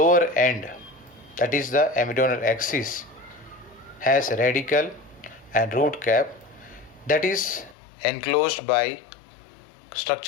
end, that is the embryonal axis, has radical and root cap that is enclosed by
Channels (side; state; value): right; drops out; at 7.8 s